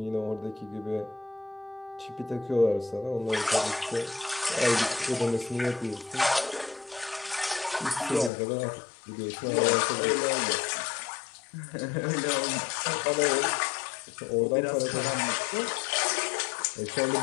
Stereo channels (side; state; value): right; drops out; at 8.3 s